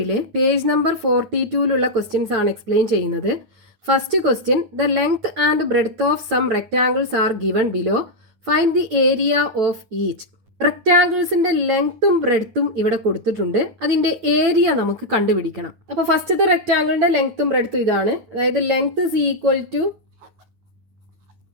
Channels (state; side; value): late; left; 8.9 ms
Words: പേജ് നമ്പർ 42-ലുള്ള ക്വസ്റ്റ്യൻസ് ആണ് എക്സ്പ്ലെയിൻ ചെയ്യുന്നത്. First question, the length and breadth of some rectangles are given below. Find the area of each. റെക്ടാങ്കിൾസിന്റെ ലെങ്ത്തും ബ്രെഡ്ത്തും ഇവിടെ കൊടുത്തിട്ടുണ്ട്. അതിന്റെ ഏരിയ നമുക്ക് കണ്ടുപിടിക്കണം. അപ്പോൾ ഫസ്റ്റത്തെ റെക്ടാങ്കിളിന്റെ ലെങ്ത്തും ബ്രെഡ്ത്തും ഇതാണ്. അതായത് length is equal to